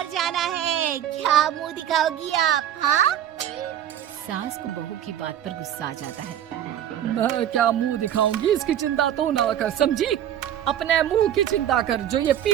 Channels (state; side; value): quieter; left; 10.6 dB